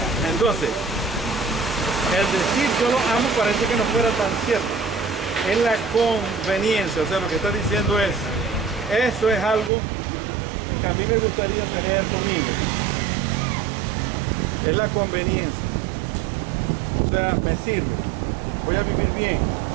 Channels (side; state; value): left; drops out; at 9.7 s